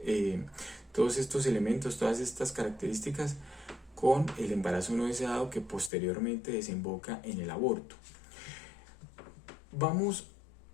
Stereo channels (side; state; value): right; drops out; at 5.9 s